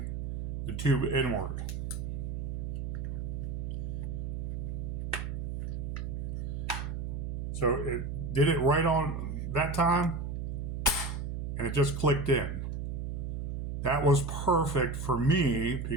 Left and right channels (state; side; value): noise; right; hum, 3 dB below the sound